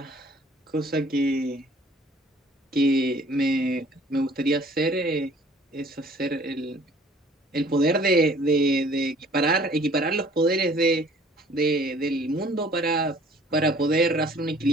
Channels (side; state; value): both; normal; correlation 0.54